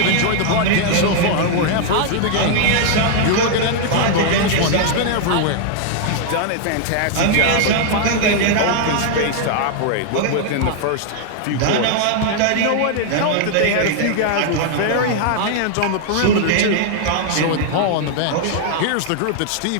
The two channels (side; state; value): both; different; correlation 0.00